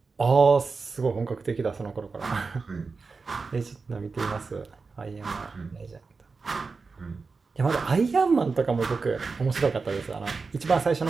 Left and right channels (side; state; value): left; quieter; 4.5 dB